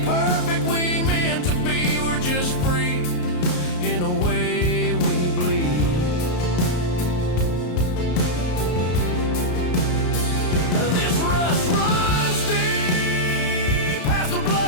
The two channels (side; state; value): right; late; 33 ms